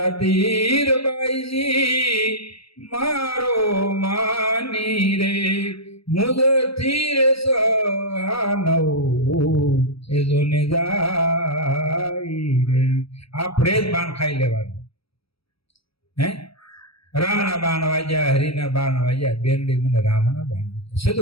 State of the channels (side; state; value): right; late; 0.76 ms